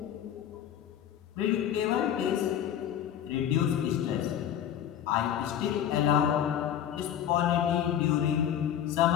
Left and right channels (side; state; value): right; quieter; 10.0 dB